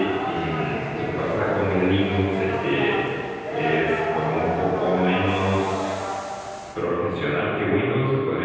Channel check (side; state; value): both; identical; correlation 1.00